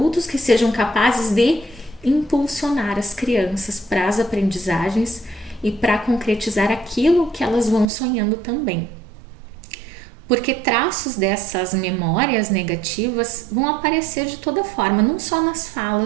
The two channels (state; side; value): drops out; left; at 7.9 s